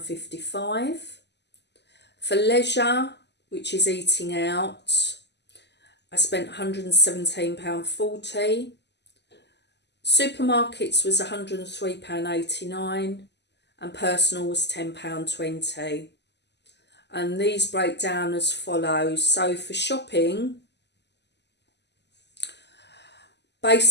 For leisure, which is eating out, I spent £117.40. Supermarkets was £103.89 and personal was £10.20. And these break down as follows. So for shopping,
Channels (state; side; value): late; right; 0.50 ms